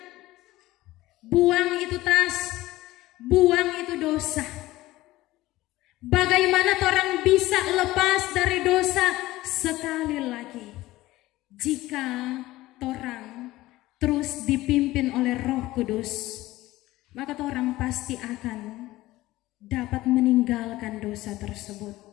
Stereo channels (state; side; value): quieter; right; 17.5 dB